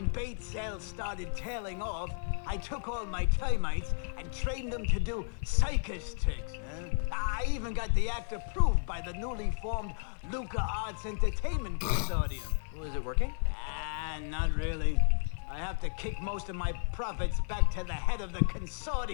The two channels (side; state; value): right; silent; 56 dB below the other